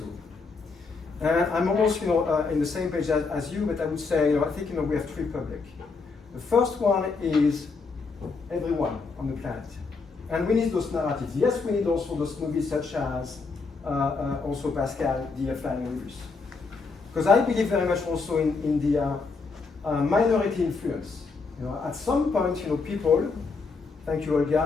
I'm almost in the same page as you, but I would say I think we have 3 public. The first one is everyone on the planet, and we need those narratives. Yes, we need also those movies such as also Pascal, the Flying Rivers, because I believe very much also in the minority influence. At some point, people. Thank you,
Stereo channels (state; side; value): quieter; right; 4.4 dB